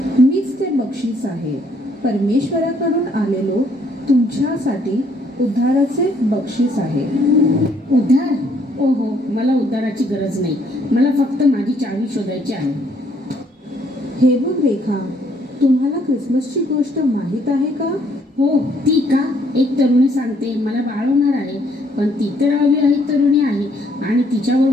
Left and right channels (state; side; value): normal; both; correlation 0.67